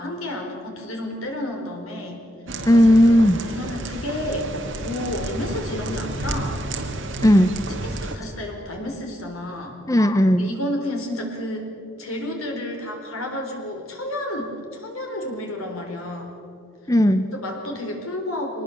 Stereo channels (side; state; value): both; normal; correlation 0.79